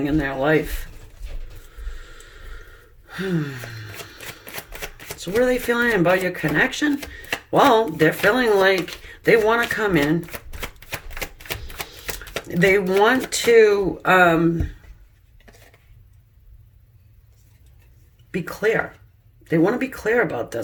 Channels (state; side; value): identical; both; correlation 1.00